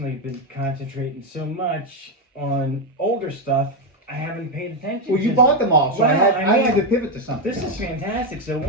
have been concentrating so much on older stuff, I haven't paid attention. Well, you bought them all, so Well, I had to pivot to something. This is fantastic. So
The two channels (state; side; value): normal; both; correlation 0.06